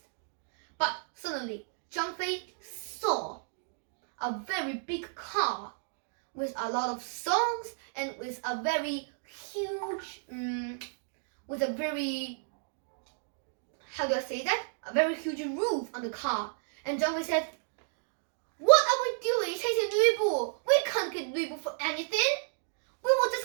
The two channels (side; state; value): left; silent; digital silence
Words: But suddenly, Zhang Fei saw a very big car with a lot of songs and with a very huge, how do I say that? A very huge roof on the car. And Zhang Fei said, "What are we doing chasing Lu Bu? We can't get Lu Bu for anything. We will